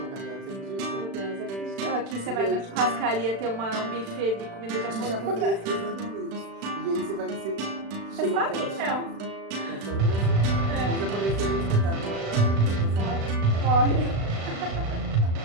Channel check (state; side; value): late; left; 36 ms